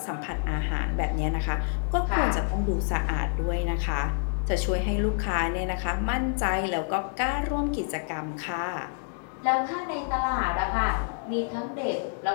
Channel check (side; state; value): right; silent; digital silence